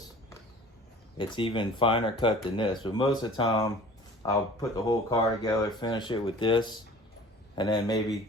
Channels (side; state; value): both; normal; correlation 0.45